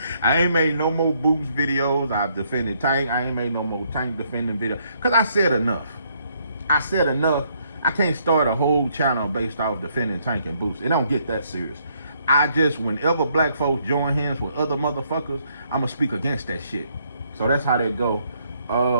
ain't made no more boost videos. I've defended Tank. I ain't made no more Tank defending videos. Because I said enough. I can't start a whole channel based off defending Tank and boost. It don't get that serious. Whenever black folks join hands with other motherfuckers, I'm going to speak against that shit. So that's how that go.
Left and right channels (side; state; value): both; inverted; correlation -0.70